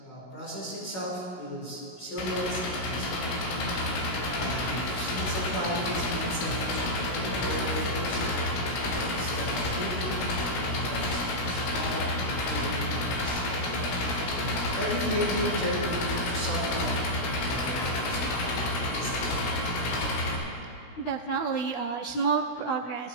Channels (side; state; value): right; late; 16 ms